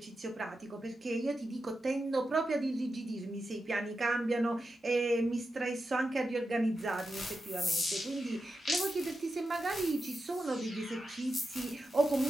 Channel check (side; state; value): both; normal; correlation 0.89